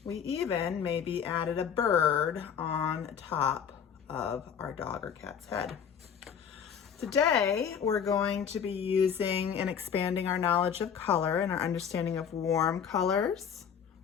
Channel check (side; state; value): right; quieter; 7.7 dB